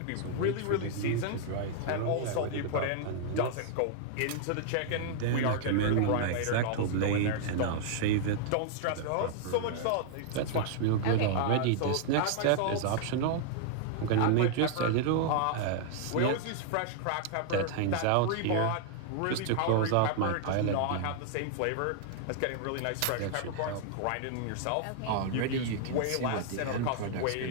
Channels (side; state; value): both; different; correlation -0.01